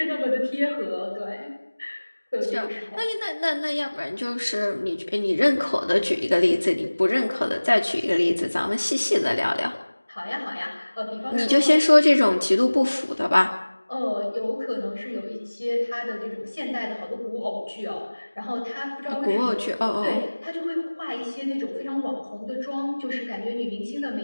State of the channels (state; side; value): inverted; both; correlation -1.00